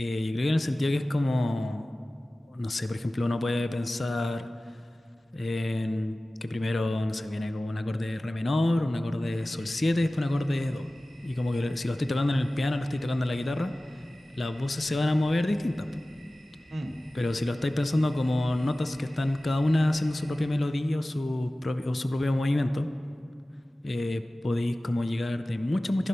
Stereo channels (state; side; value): normal; both; correlation 0.97